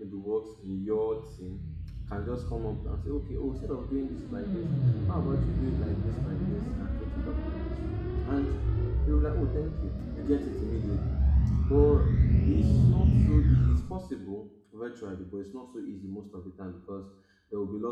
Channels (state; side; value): identical; both; correlation 1.00